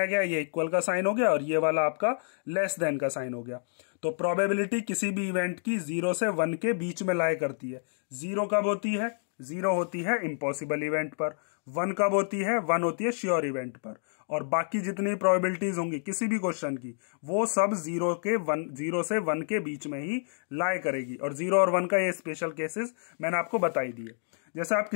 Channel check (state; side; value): silent; right; digital silence